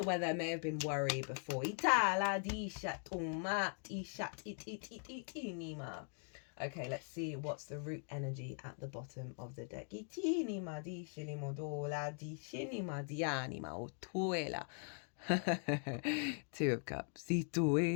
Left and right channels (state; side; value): silent; right; 50 dB below the other